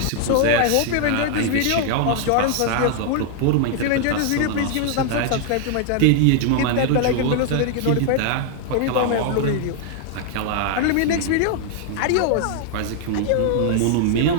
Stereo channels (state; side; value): different; both; correlation 0.00